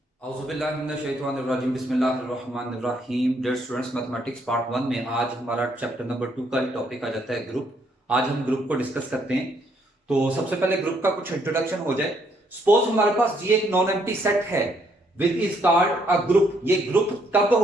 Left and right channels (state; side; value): normal; both; correlation 0.70